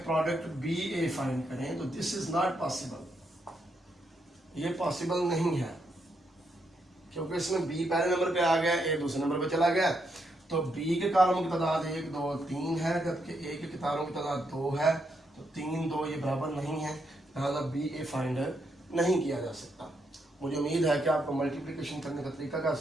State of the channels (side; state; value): both; normal; correlation 0.79